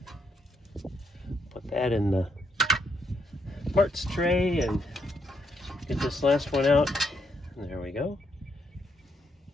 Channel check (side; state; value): both; normal; correlation 0.76